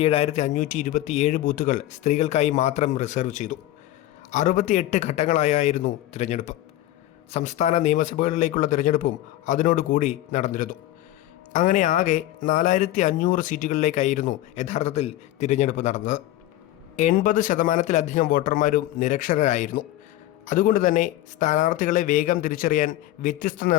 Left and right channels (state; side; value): quieter; right; 14.6 dB